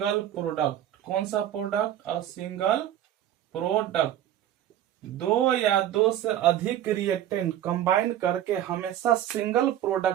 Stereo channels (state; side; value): quieter; left; 11.5 dB